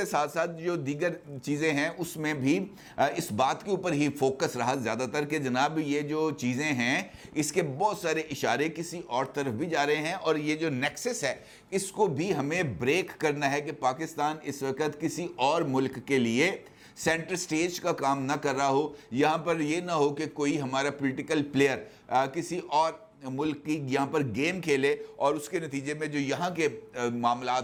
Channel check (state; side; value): identical; both; correlation 1.00